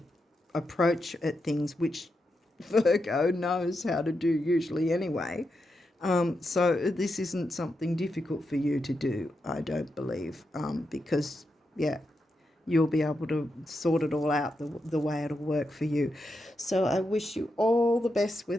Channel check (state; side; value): normal; both; correlation 0.86